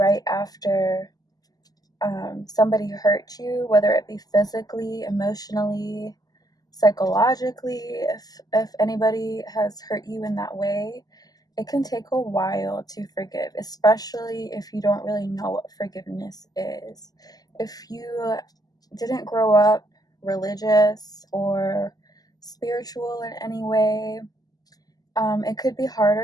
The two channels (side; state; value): right; late; 0.18 ms